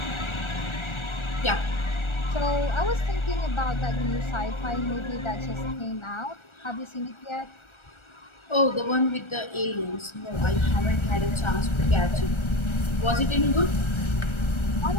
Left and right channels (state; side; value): late; right; 1.3 ms